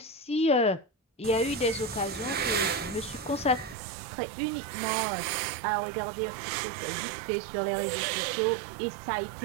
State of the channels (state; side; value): drops out; left; at 3.8 s